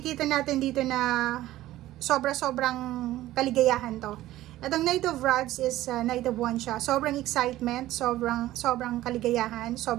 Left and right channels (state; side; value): quieter; left; 15.2 dB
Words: natin dito na sobra-sobrang kaligayahan to. Atong Knight of Rods is Knight of Wands siya. Sobrang excitement, sobrang kaligayahan,